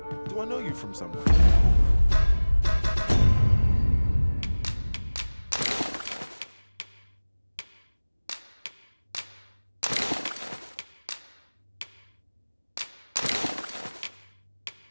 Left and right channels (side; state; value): both; inverted; correlation -1.00